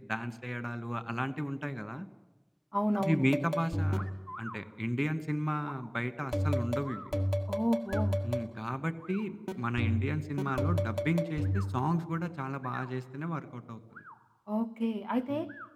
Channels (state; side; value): identical; both; correlation 1.00